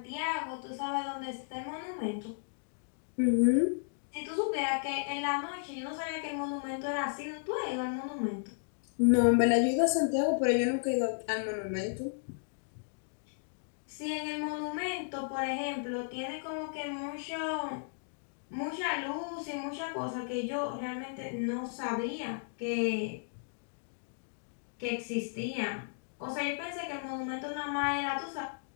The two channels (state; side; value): silent; right; digital silence